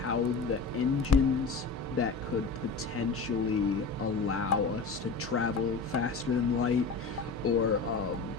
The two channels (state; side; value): quieter; right; 4.4 dB